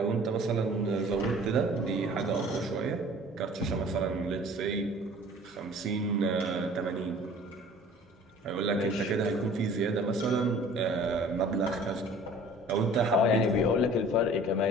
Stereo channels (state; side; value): normal; both; correlation 0.48